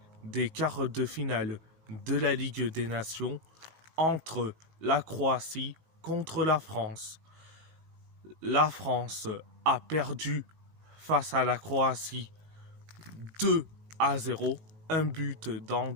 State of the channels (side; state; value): left; late; 18 ms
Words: des quarts de finale de la Ligue des Nations entre la Croatie contre la France. La France a perdu face à la Croatie 2-0, un but d'Ante